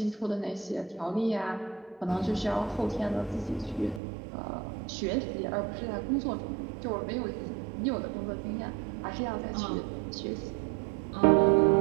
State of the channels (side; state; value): left; drops out; at 4.0 s